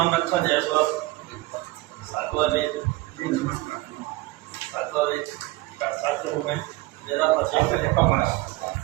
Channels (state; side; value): quieter; left; 19.6 dB